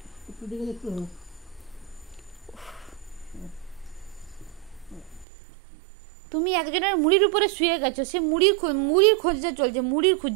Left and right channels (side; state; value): left; drops out; at 5.2 s